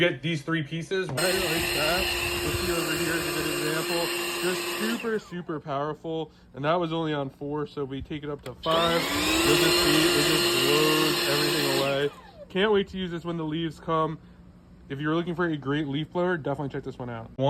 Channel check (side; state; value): both; identical; correlation 1.00